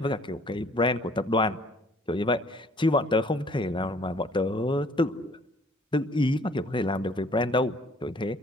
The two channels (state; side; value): normal; both; correlation 0.57